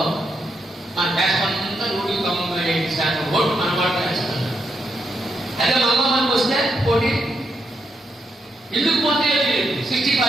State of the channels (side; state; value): both; normal; correlation 0.80